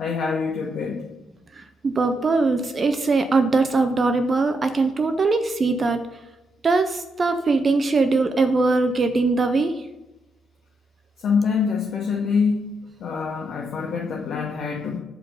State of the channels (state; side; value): normal; both; correlation 0.81